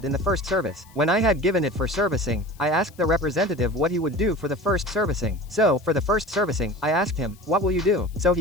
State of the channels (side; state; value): left; noise; hiss, 27 dB below the sound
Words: in the first service. When I had given it for servicing, I asked the representative what he would do for the first servicing. So, for the first servicing, I asked him, what will you do? So